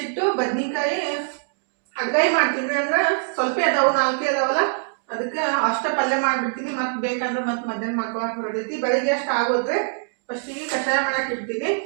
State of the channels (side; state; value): left; silent; digital silence